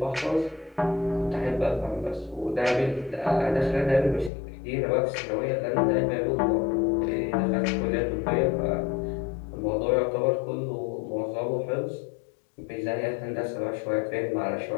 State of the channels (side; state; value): right; drops out; at 4.3 s